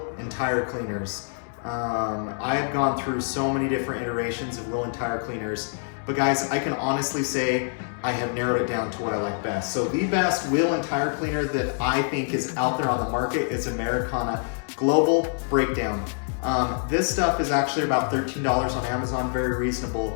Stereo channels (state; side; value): silent; right; digital silence